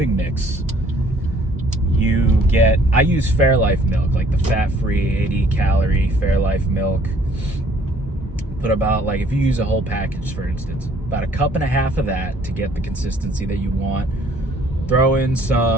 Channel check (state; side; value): normal; both; correlation 0.59